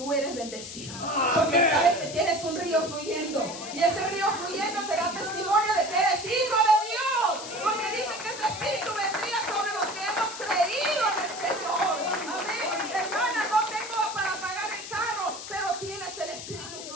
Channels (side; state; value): left; noise; hiss, 10 dB below the sound